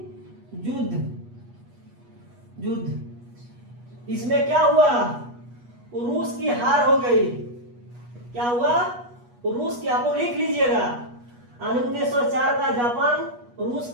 युद्ध। इसमें क्या हुआ? रूस की हार हो गई। क्या हुआ? रूस की, आप लोग लिख लीजिएगा, 1904 का जापान रूस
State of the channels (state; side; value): late; left; 8.3 ms